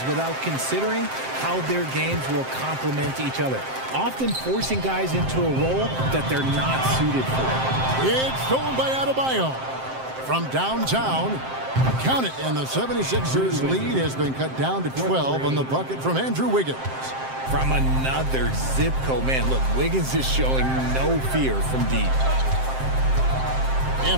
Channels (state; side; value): late; left; 7.6 ms